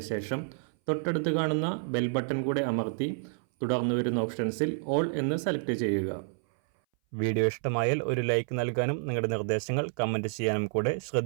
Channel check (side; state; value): left; silent; 58 dB below the other